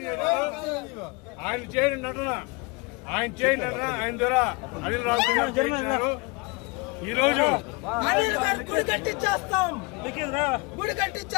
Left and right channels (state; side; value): quieter; right; 28.1 dB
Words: ఆయన చేయని నటన, ఆయన ద్వారా అనిల్ రావు గారు ఈ రోజు గుడి కట్టించేస్తాం.